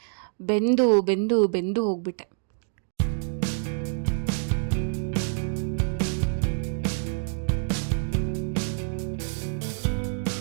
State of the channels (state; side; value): silent; left; 60 dB below the other